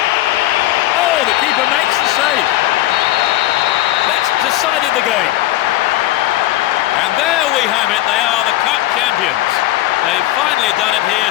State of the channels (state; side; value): quieter; right; 15.6 dB